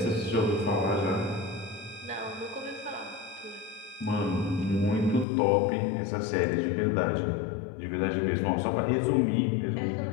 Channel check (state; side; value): drops out; right; at 5.2 s